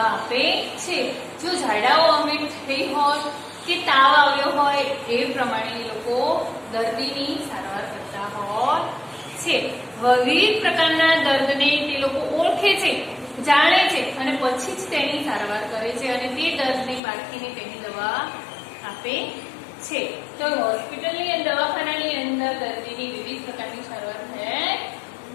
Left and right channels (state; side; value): drops out; right; at 17.0 s